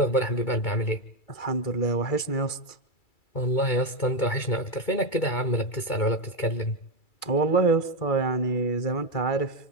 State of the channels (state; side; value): late; right; 2.3 ms